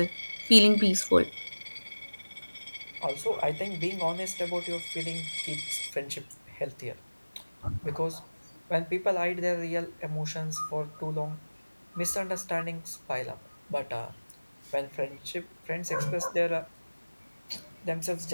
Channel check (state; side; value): inverted; both; correlation -1.00